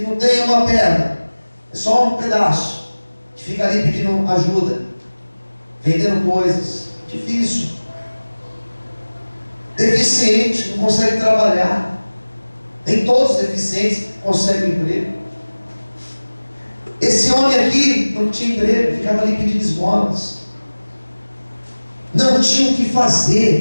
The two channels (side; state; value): both; inverted; correlation -1.00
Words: não tem uma perna, é só um pedaço, que fica ali pedindo ajuda, vendendo coisas. Difícil. Deficiente, não consegue trabalhar. Nem todos os deficientes conseguem emprego. Esse homem aqui não tinha emprego, ficava ali pedindo esmolas. Não tinha o que